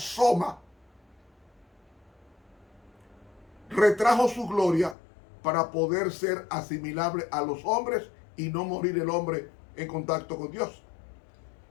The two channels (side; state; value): right; drops out; at 5.0 s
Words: Retrajo su gloria para poder ser asimilable a los hombres y no morir el hombre en contacto con Dios.